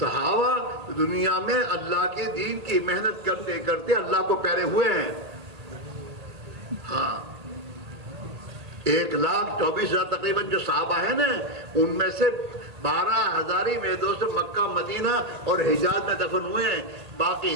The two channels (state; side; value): late; left; 1.8 ms